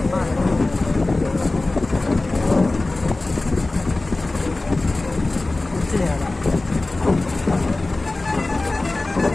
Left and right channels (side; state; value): right; quieter; 3.0 dB